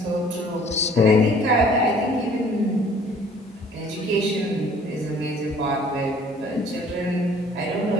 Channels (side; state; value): both; normal; correlation 0.55